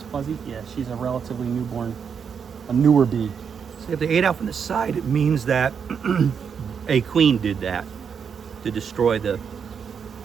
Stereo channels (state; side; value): quieter; left; 6.8 dB